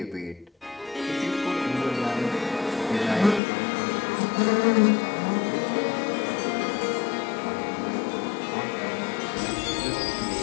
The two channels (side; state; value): right; drops out; at 3.4 s